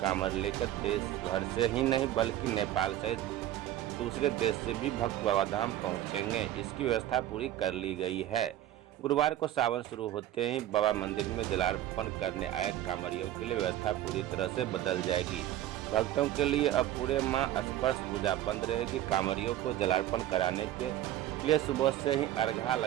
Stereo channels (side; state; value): left; quieter; 13.1 dB